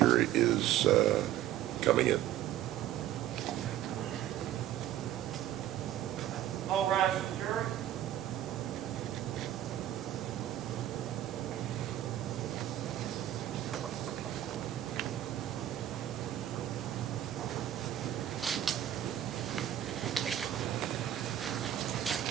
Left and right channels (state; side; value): quieter; left; 12.1 dB